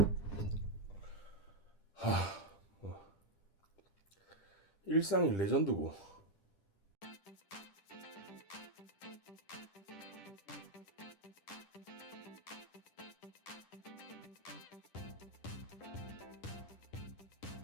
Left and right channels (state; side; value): late; right; 10 ms